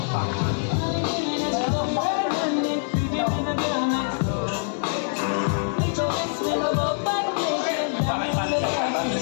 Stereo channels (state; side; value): silent; right; digital silence